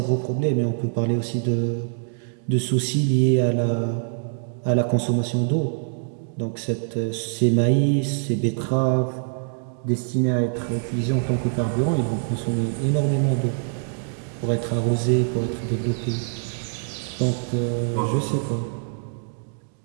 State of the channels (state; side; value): silent; left; digital silence